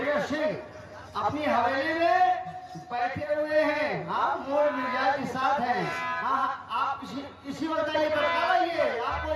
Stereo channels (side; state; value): both; identical; correlation 1.00